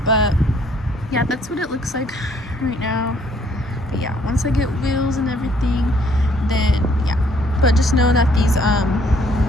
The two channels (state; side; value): normal; both; correlation 0.64